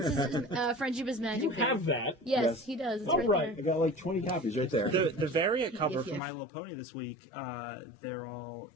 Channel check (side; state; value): right; drops out; at 6.2 s